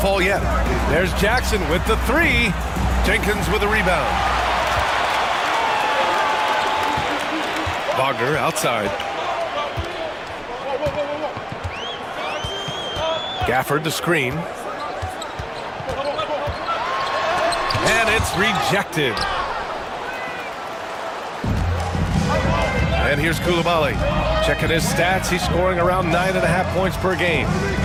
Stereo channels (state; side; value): identical; both; correlation 1.00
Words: yet. There's Jackson with the 3. Jenkins with a rebound. Wagner outside. Gafford the screen. And it's rejected. And here's Coulibaly. Checking his stats, he's scoring around 9.5 points per game.